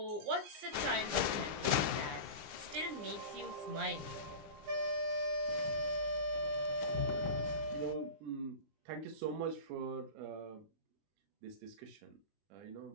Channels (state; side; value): late; left; 20 ms